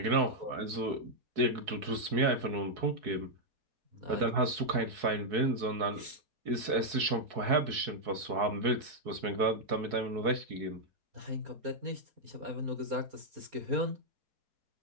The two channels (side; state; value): left; late; 4.6 ms